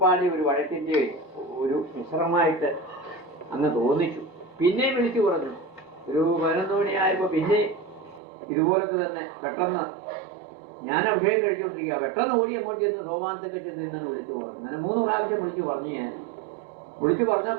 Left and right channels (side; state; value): left; drops out; at 8.2 s